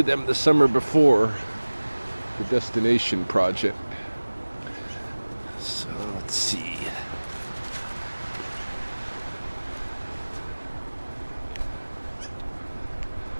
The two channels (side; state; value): both; inverted; correlation -1.00